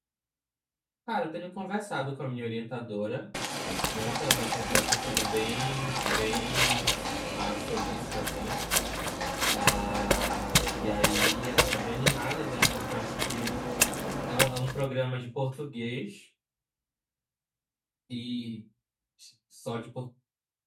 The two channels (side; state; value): both; identical; correlation 1.00